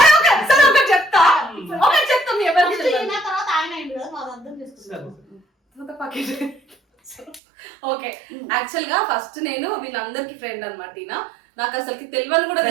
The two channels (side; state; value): left; drops out; at 7.4 s